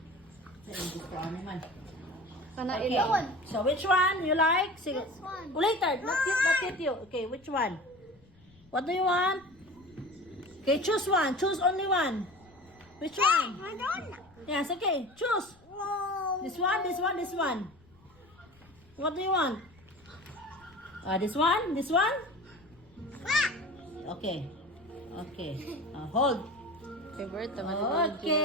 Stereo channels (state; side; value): noise; left; rumble, 28 dB below the sound